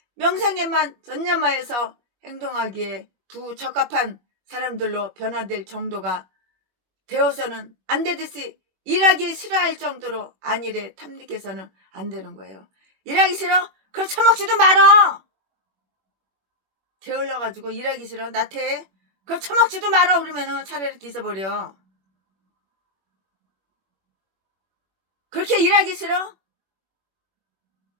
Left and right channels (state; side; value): late; left; 21 ms